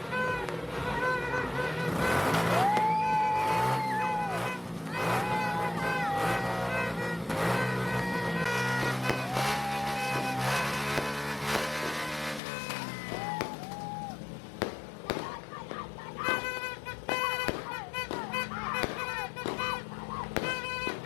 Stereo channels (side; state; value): right; drops out; at 12.4 s